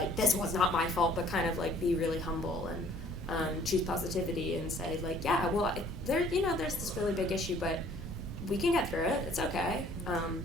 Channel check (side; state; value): both; normal; correlation 0.56